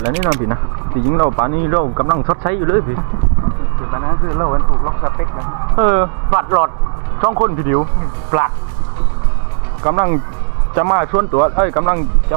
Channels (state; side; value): silent; left; digital silence